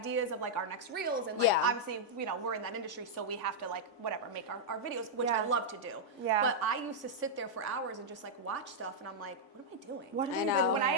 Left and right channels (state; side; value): late; right; 3.5 ms